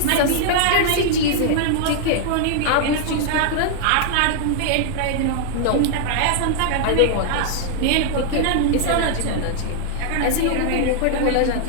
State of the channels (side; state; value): both; different; correlation 0.00